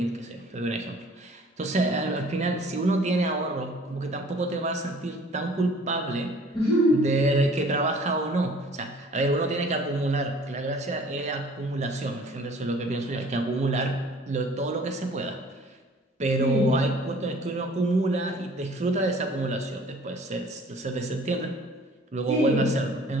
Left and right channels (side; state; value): both; normal; correlation 0.51